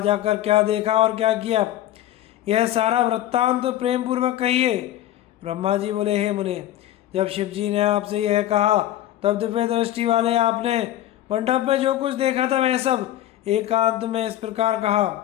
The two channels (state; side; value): quieter; right; 13.2 dB